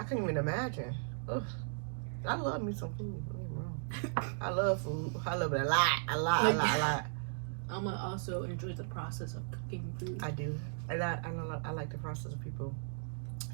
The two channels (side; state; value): left; silent; digital silence